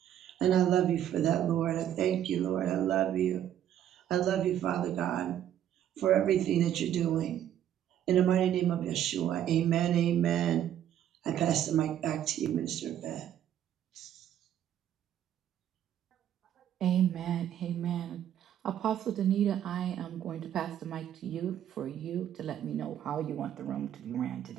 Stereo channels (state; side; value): quieter; left; 10.7 dB